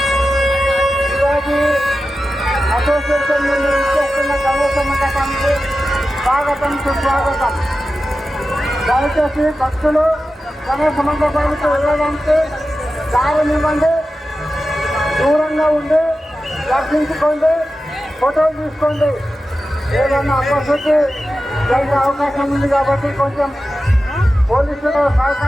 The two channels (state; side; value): normal; both; correlation 0.93